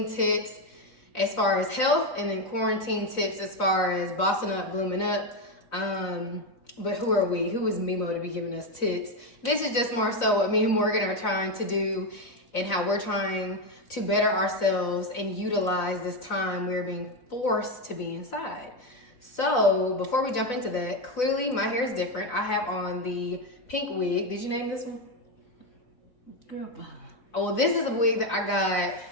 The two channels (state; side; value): late; right; 4.0 ms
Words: tips as far as health, and then quarantine tips as far as bossing up, blooming up. But who are we? Who is MeMo to be giving us tips? This is just more so what me and Morgan are trying to do and how we're trying to better ourselves and utilize this time we're being forced to be inside. So before we jump into that, clearly my hair is different. I have on the pink wig. Did you name this one? Girl, bye. Oh, well, this is a wig that I got.